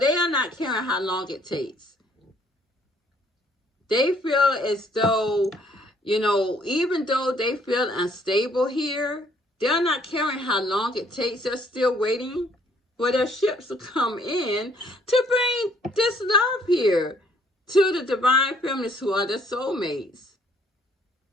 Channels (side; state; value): both; normal; correlation 0.64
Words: are not caring how long it takes. They feel as though, you know, even though they feel unstable here, they're not caring how long it takes. They're still waiting for their ships to come in to bring this love here to the divine feminists who are their soulmates.